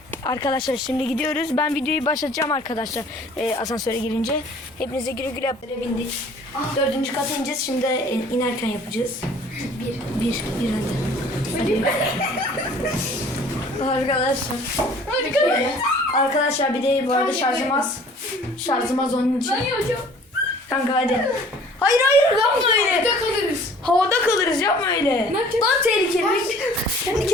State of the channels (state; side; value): normal; both; correlation 0.51